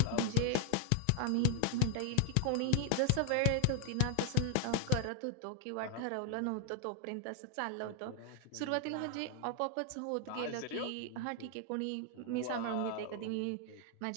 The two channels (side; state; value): both; different; correlation 0.00